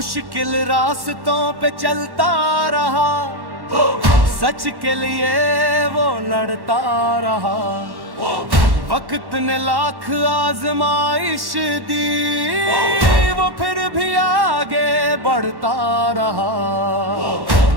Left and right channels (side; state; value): left; late; 1.1 ms